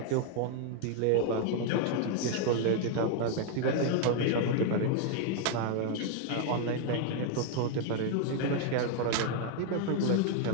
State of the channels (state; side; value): different; both; correlation 0.00